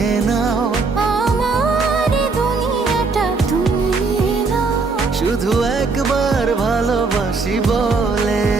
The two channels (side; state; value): left; quieter; 4.2 dB